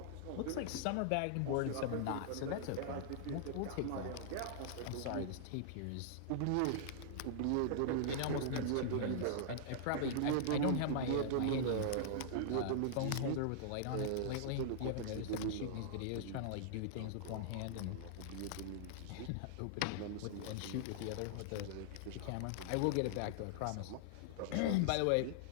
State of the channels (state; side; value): different; both; correlation -0.01